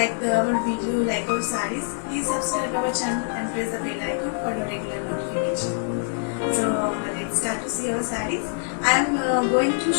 our video, like our sarees, please subscribe our channel and press the bell icon for your regular notification. So let's start to see our sarees. I am going to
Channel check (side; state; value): right; silent; digital silence